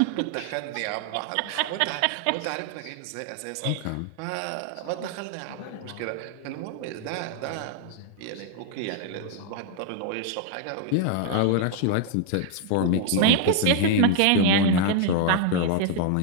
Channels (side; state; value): both; different; correlation -0.01